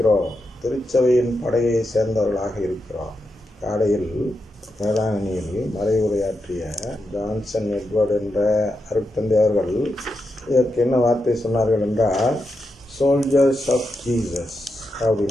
திருச்சபையின் படையை சேர்ந்தவர்களாக இருக்கிறோம். காலையில் வேளாங்கண்ணியில் மறைவுரையாற்றிய ஜான்சன் எட்வர்ட் என்ற அருட்தந்தை அவர்கள் இதற்கு என்ன வார்த்தை சொன்னார்கள் என்றால், சோல்ஜர்ஸ் ஆஃப் ஜீசஸ்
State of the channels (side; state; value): both; normal; correlation 0.86